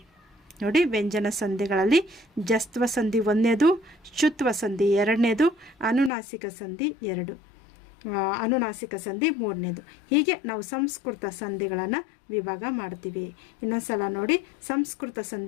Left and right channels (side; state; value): right; drops out; at 6.1 s